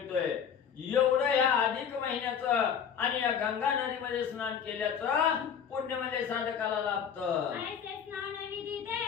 एवढं या अधिक महिन्याचं आणि या गंगा नदीमध्ये स्नान केल्याचं पुण्य म्हणजे साधकाला लाभतं. ऐसे स्नान विधी ते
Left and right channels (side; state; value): right; quieter; 7.7 dB